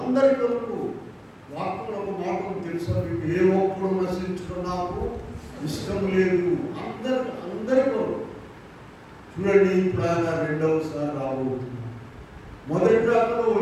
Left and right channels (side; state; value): both; identical; correlation 1.00